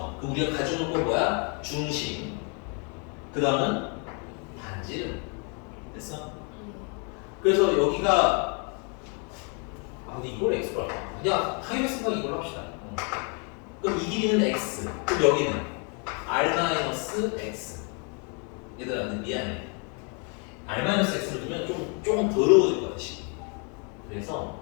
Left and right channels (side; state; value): right; quieter; 36.7 dB